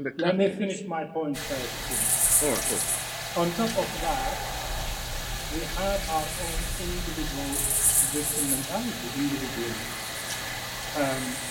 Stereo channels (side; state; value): both; identical; correlation 1.00